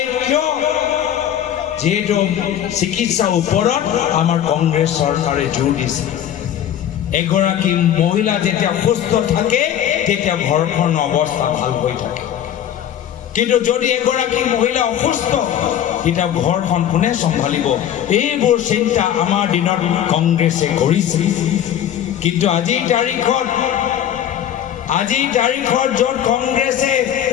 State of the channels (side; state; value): right; quieter; 10.4 dB